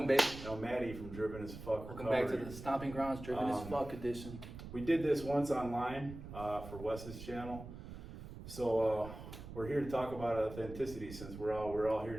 baby. Maddie from Driven as Fuck Welcome Recovery. back to the Stomping Grounds Driven as Fuck edition. We did this once online for Wes's channel. So we're here to talk about authenticity, since we're all here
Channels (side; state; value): right; noise; rumble, 12 dB below the sound